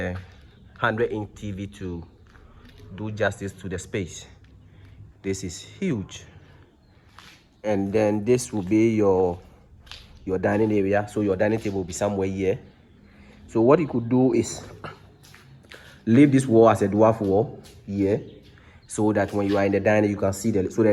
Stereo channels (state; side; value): identical; both; correlation 1.00